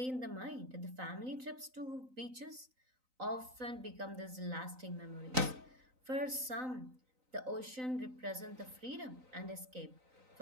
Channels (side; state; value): left; late; 3.9 ms